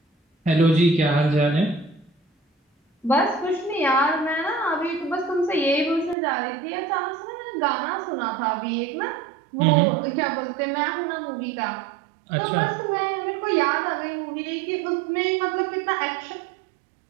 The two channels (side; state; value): left; drops out; at 6.2 s